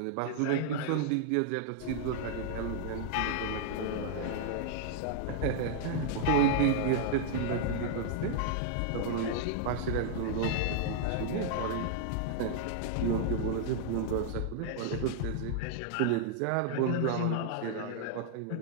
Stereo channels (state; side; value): different; both; correlation -0.01